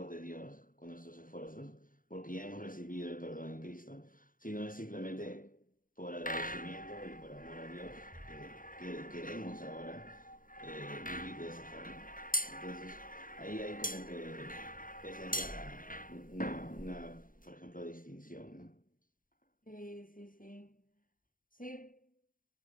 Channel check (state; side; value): late; right; 0.40 ms